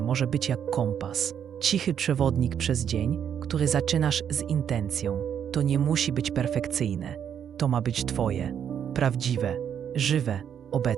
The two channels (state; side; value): quieter; left; 8.6 dB